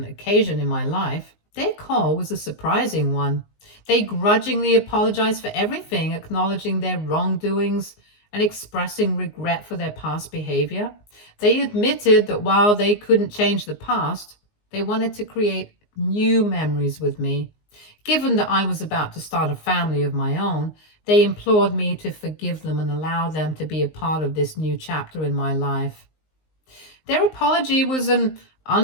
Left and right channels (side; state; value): right; late; 19 ms